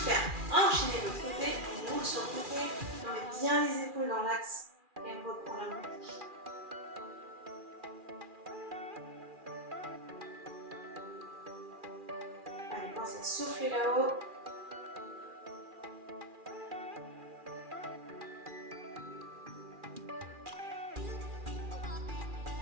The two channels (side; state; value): left; late; 2.4 ms